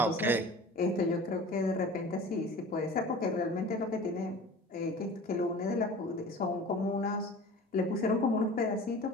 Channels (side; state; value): both; normal; correlation 0.40